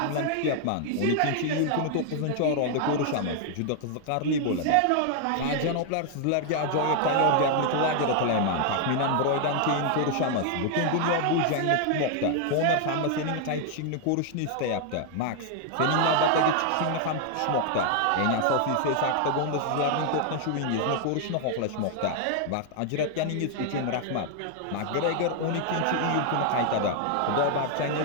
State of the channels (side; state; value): both; different; correlation 0.00